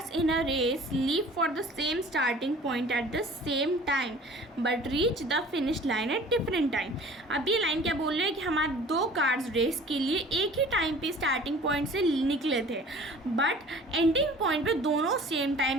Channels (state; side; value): normal; both; correlation 0.47